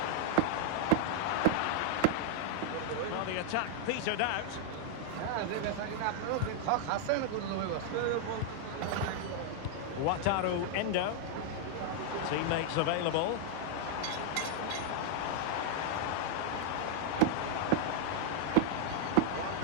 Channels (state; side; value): different; both; correlation -0.01